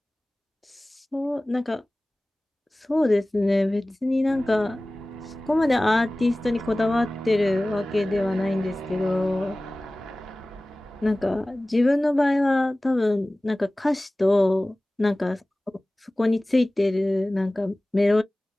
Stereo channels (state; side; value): normal; both; correlation 0.98